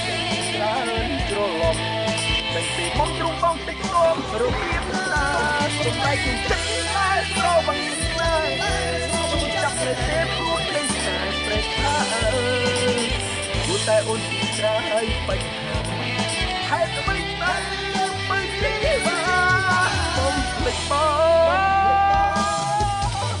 ជាច្រើនច្រឡំតែពីមុនទ្រូងបងតិចគំរបៀបណាសម្រេចចិត្តតែស្រវឹងស្នេហ៍ចាប់នៅទេព្រោះគ្រីស្មាសព្រះថាគូតែអូនត្រាយបញ្ហាហេតុអ្វីទៅបើជីវ៉ាសូមភ្លេចបង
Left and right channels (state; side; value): identical; both; correlation 1.00